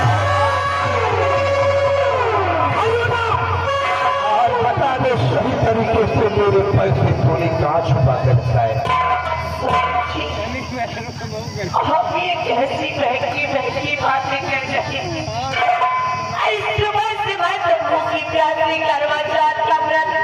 सही तरीके से मेरे पैसे तूने कहाँ छुपा कर रखा है? आप ये कैसी बहकी बातें कर रहे हैं? सुबह सुबह तब्बू की प्यासी करवा चौथ का व्रत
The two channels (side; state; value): both; identical; correlation 1.00